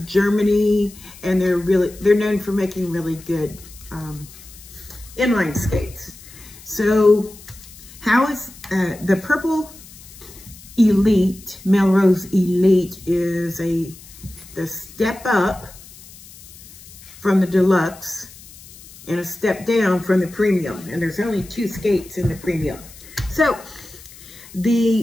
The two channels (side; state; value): left; noise; hiss, 20 dB below the sound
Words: Germany, and they're known for making really good inline skates. So how is the Purple Elite, Melrose Elite is the step up from the Deluxe and a step down from the Premium. And there's only 2 skates in the Premium. So